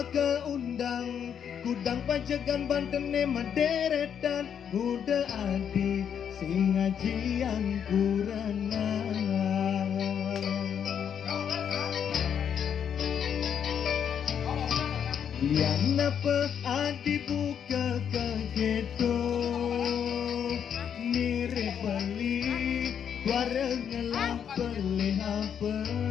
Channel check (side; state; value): right; quieter; 8.2 dB